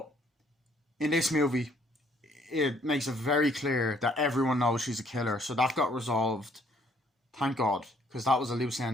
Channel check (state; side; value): normal; both; correlation 0.64